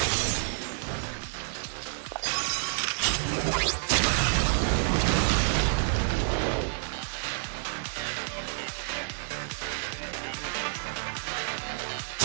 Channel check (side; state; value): left; silent; 59 dB below the other